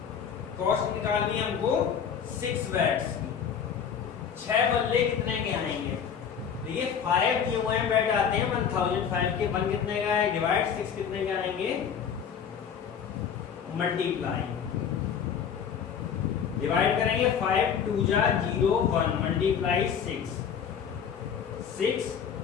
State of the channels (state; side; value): quieter; right; 7.6 dB